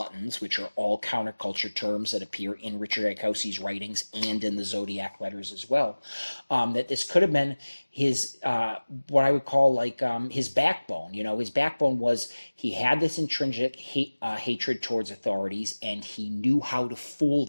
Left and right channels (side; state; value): both; inverted; correlation -1.00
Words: which are all counterculture terms that appear in Richard Gaikowski's writings and in the Zodiac letters as well. That this could have been his, what I would call like his backbone. His backbone was he had this intrinsic hatred towards authorities, and he knew how to fool